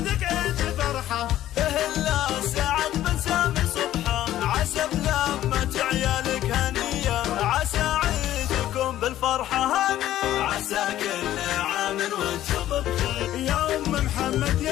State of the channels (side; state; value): right; quieter; 13.1 dB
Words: عيد فرحة، اهلا سعد بن سامي صبحة، عسى بلمة عيالك هنية، عسى عيدكم بالفرحة هاني، عسى كل عام وانتم بخير. يا أم محمد